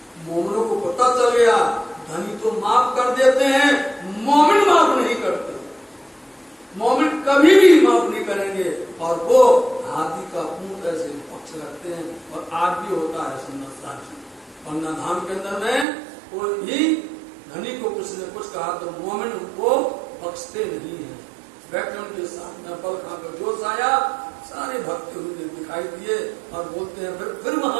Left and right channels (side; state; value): left; drops out; at 15.9 s